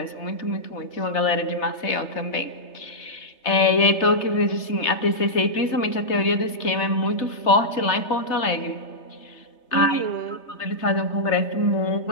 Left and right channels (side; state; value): right; late; 3.3 ms